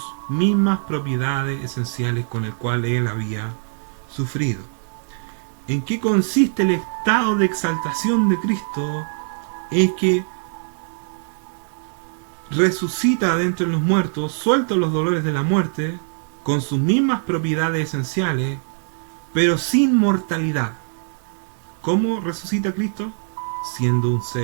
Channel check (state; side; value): silent; left; digital silence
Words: mismas propiedades esenciales con el cual Él había sufrido. ¿En qué consiste el estado de exaltación de Cristo? Es que resucita de entre los muertos, suelta los dolores de la muerte, con sus mismas propiedades esenciales, pero sin mortalidad. ¿Cómo resucita Cristo? Siendo un